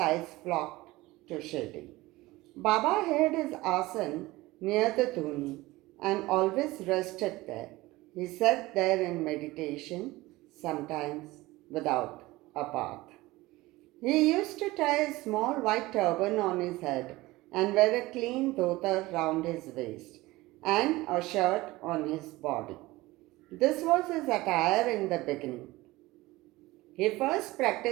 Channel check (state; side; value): quieter; left; 19.6 dB